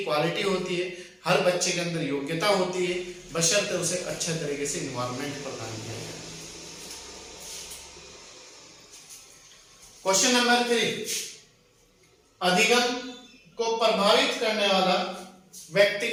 क्वालिटी होती है, हर बच्चे के अंदर योग्यता होती है, बशर्ते उसे अच्छे तरीके से एनवायरनमेंट प्रदान किया जाए। क्वेश्चन नंबर 3, अधिगम को प्रभावित करने वाला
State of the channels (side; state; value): both; identical; correlation 1.00